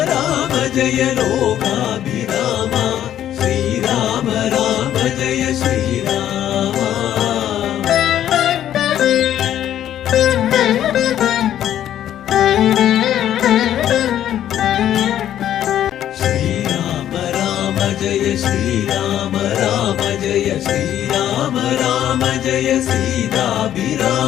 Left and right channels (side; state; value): right; quieter; 11.2 dB